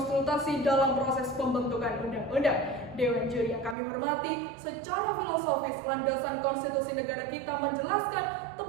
dalam proses pembentukan undang-undang. Dewan Juri yang kami hormati, secara filosofis landasan konstitusi negara kita menjelaskan,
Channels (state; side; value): drops out; left; at 3.8 s